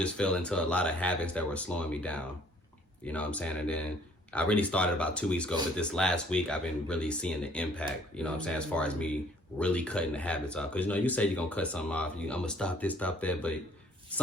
fell into a lot of habits that were slowing me down. You know what I'm saying? And then I really started about 2 weeks ago, but this last week I've been really seeing the impact, you know what I'm saying, as far as me really cutting the habits off. Because, you know, you say you're going to cut something off, I'm going to stop this, stop that, but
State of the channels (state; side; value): normal; both; correlation 0.58